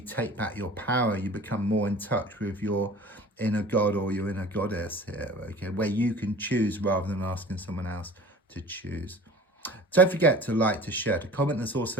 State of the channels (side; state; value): both; normal; correlation 0.42